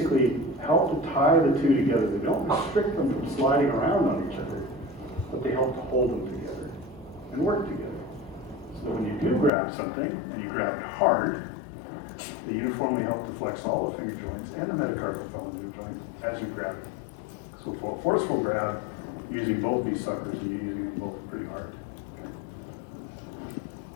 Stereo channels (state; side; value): drops out; right; at 9.5 s